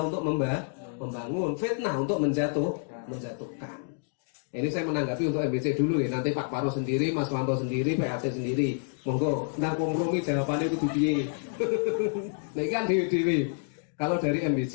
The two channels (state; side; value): silent; right; digital silence